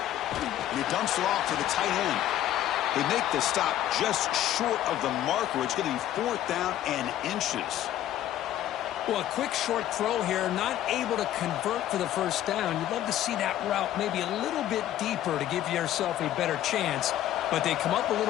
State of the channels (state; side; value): quieter; right; 12.5 dB